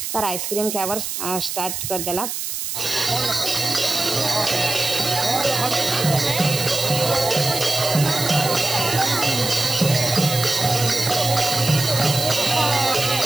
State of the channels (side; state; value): right; noise; hiss, 4 dB below the sound